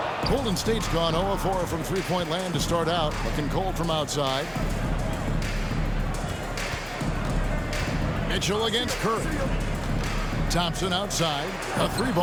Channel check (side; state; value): both; identical; correlation 1.00